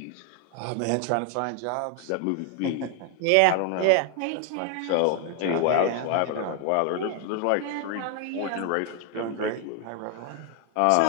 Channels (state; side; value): different; both; correlation 0.00